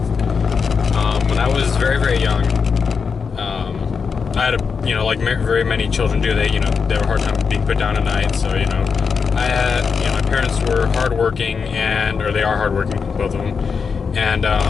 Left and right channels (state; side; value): quieter; right; 5.7 dB